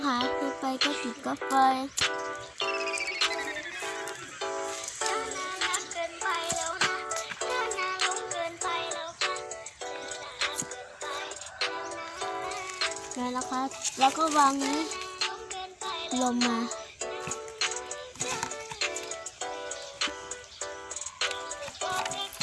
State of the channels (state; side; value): identical; both; correlation 1.00